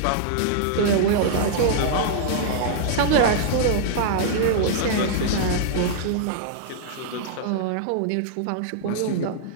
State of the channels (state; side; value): different; both; correlation -0.01